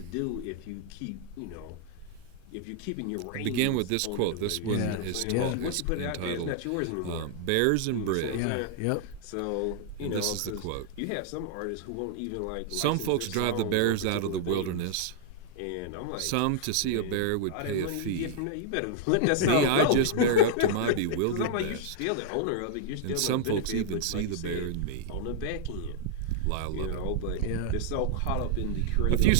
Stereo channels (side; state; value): both; different; correlation -0.01